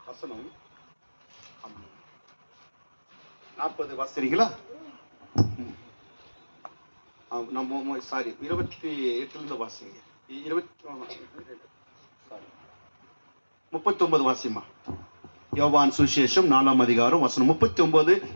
வசனம் 40 வாசிக்கிறீங்களா? நம்ம சாரி 28 வாசிங்க. 39 வாசிமா. யோவான் சுவிசேஷம் 4ஆம் அதிகாரம் வசனம் 39,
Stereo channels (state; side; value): inverted; both; correlation -1.00